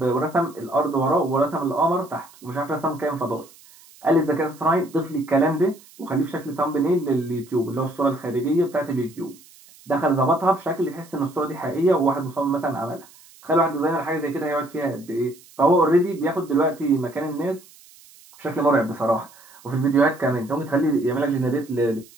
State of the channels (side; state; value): right; noise; hiss, 24 dB below the sound